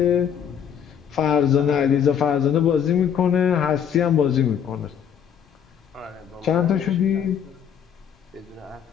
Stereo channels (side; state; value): right; quieter; 8.3 dB